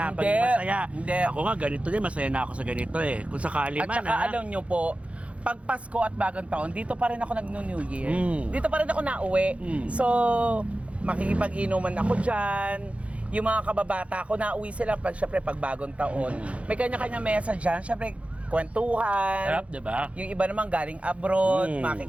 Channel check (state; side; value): late; left; 0.063 ms